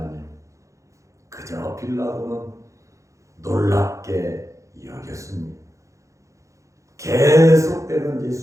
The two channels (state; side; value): late; left; 0.15 ms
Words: 그저 빌라도는 놀랍게 여겼습니다. 계속되는